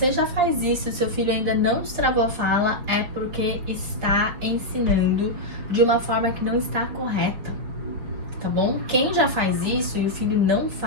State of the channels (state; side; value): late; left; 5.4 ms